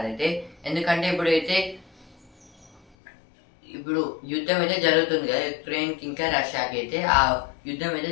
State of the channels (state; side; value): drops out; right; at 3.0 s